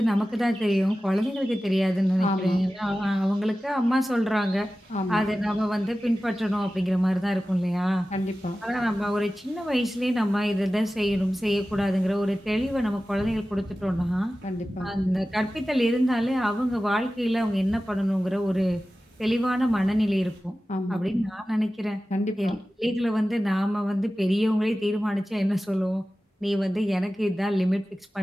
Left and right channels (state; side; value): normal; both; correlation 0.95